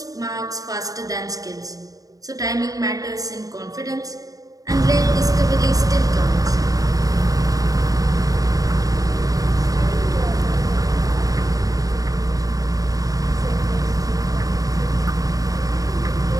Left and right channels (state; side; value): late; left; 0.17 ms